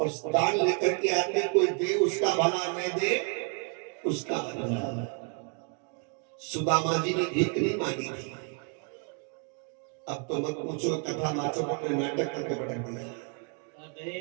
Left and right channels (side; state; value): left; quieter; 38.5 dB